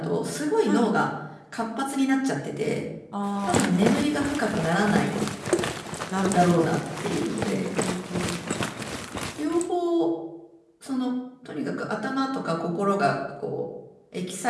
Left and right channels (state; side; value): identical; both; correlation 1.00